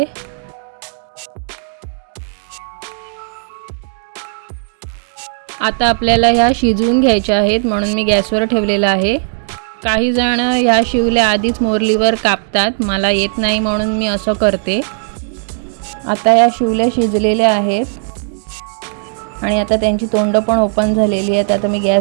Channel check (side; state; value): left; silent; digital silence